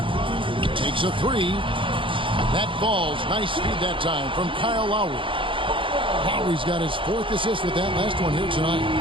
Takes a 3. That falls. Nice speed that time from Kyle Lowry. Lowry's got his 4th assist with that last one here tonight.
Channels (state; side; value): late; left; 0.25 ms